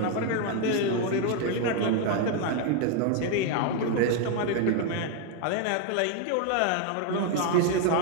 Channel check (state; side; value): different; both; correlation 0.01